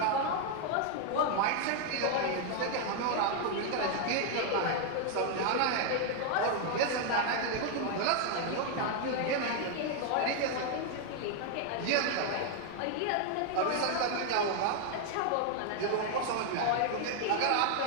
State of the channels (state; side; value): different; both; correlation 0.00